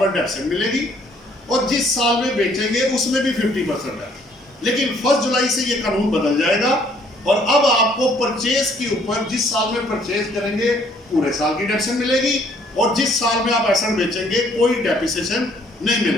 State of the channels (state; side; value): normal; both; correlation 0.63